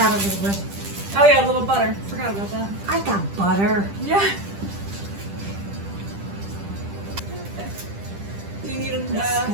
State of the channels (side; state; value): left; late; 10 ms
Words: a little bit? Oh yeah, a little butter. Forgot about that. I got butter. Yeah. Do you need an,